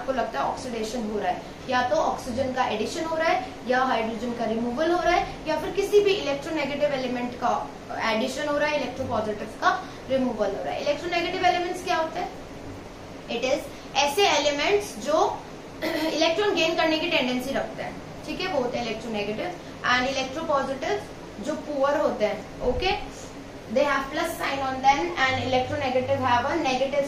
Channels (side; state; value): both; identical; correlation 1.00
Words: लगता है ऑक्सीडेशन हो रहा है, या तो ऑक्सीजन का एडिशन हो रहा है या हाइड्रोजन का रिमूवल हो रहा है या फिर किसी भी इलेक्ट्रोनेगेटिव एलिमेंट का एडिशन हो रहा है, इलेक्ट्रोपॉजिटिव का रिमूवल हो रहा है. इलेक्ट्रोनेगेटिव एलिमेंट्स क्या होते हैं? इट इज ऐसे एलिमेंट्स जो इलेक्ट्रॉन गेन करने की टेंडेंसी रखते हैं. ठीक है, वो होते हैं इलेक्ट्रोनेगेटिव. एंड इलेक्ट्रोपॉजिटिव जो पुअर होते हैं, okay, they have plus sign on them and electronegative have a negative